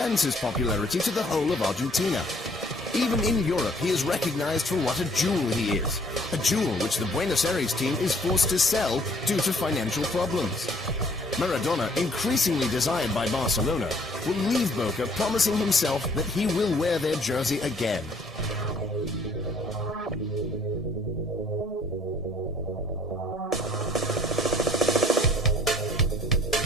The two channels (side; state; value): both; normal; correlation 0.59